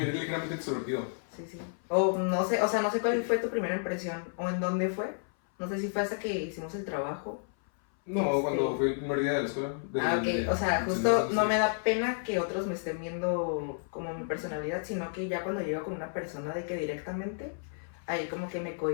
ligeramente extrovertido. Sí. O no sé cuál fue tu primera impresión o en dónde fue. No sé si fue hasta que hicimos el trabajo. No, cuando fue el primer día de la escuela. Ok, o sea, justo no me da pena que otros me estén viendo como mi personalidad, sino que ya cuando llego con una persona de que directamente, ahí como que me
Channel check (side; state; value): right; silent; 57 dB below the other